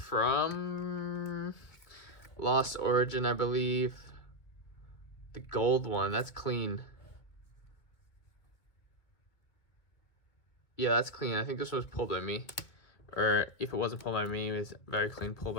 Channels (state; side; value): late; right; 2.1 ms